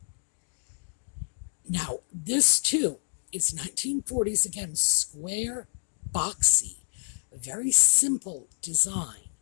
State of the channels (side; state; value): right; silent; digital silence